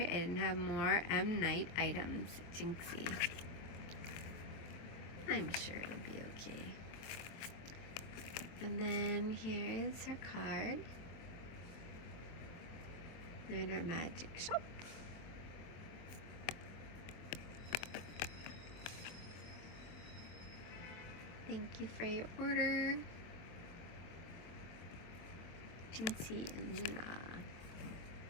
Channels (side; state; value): right; late; 23 ms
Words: I didn't have more M. Night items. Jinxie. I'm sure it'll be okay. And then here's her card. Lunar Magic Shop. Thank you for your order. Jinxie and Luna.